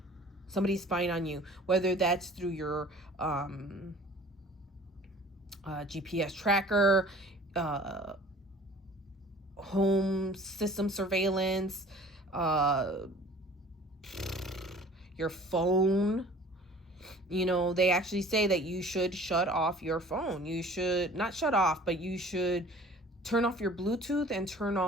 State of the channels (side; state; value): both; normal; correlation 0.48